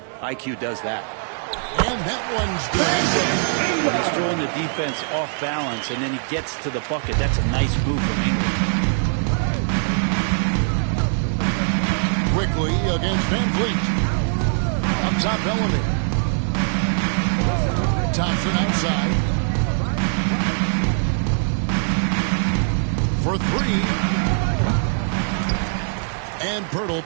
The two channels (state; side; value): silent; left; 64 dB below the other